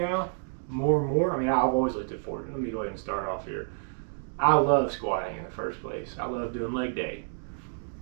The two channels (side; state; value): left; silent; digital silence